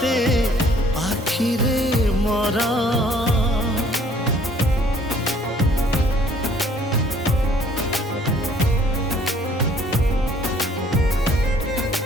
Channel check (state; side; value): normal; both; correlation 0.59